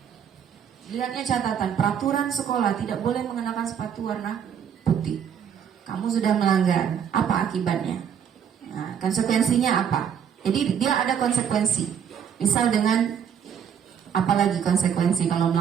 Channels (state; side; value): quieter; left; 8.1 dB